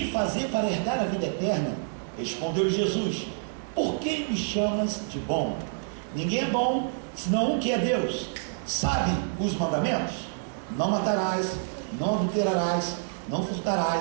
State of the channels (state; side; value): silent; left; 60 dB below the other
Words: de fazer para herdar a vida eterna? Respondeu Jesus: por que me chamas de bom? Ninguém é bom, senão um que é Deus. Sabe os mandamentos? Não matarás, não adulterarás, não